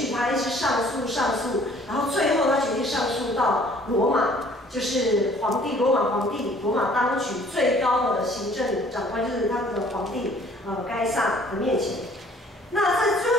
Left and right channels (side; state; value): both; normal; correlation 0.56